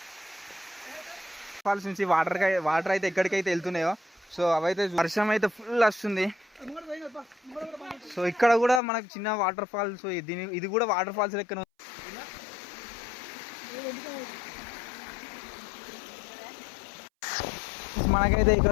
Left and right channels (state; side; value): drops out; right; at 8.8 s